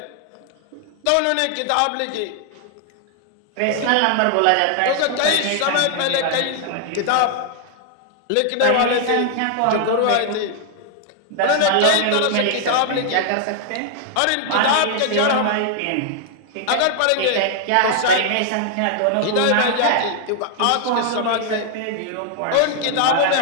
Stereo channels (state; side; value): different; both; correlation 0.00